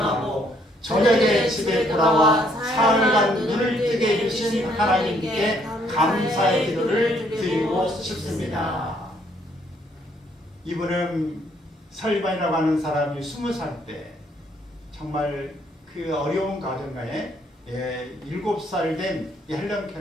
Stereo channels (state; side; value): normal; both; correlation 0.68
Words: 저녁에 집에 돌아와 사흘간 눈을 뜨게 해주신 하나님께 감사의 기도를 드리고 싶습니다. 이분은 설리반이라고 하는 사람이 20살 때 정말 그 어려운 가정가에 7살 된 헬런